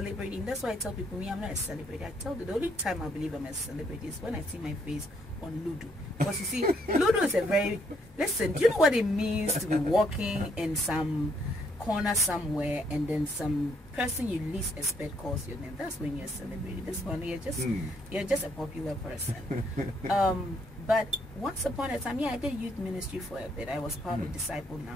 that's why I tell people, me, I'm not a celebrity. I tell you, the only time I believe I'm a celebrity is when I see my face on Ludo. Because you see, Ludo is a very, listen, do you know what it means to be walking in some corner somewhere and then some person you least expect calls your name? That's when you're a celebrity. This one, you're just a popular person. But once upon a time, I did youth ministry for a bit. I was part of Disciple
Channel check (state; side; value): normal; both; correlation 0.71